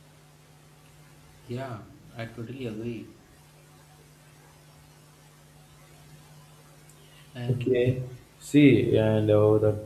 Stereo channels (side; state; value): both; identical; correlation 1.00